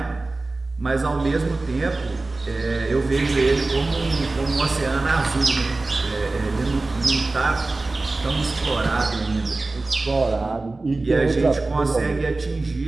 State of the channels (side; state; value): left; quieter; 3.3 dB